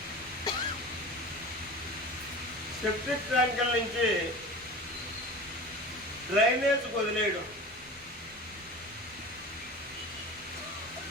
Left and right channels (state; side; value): normal; both; correlation 0.35